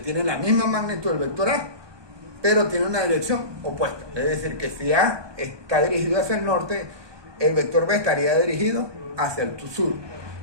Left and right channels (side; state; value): left; late; 1.2 ms